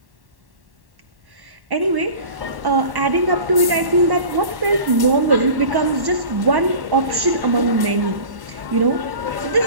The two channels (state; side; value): late; left; 1.1 ms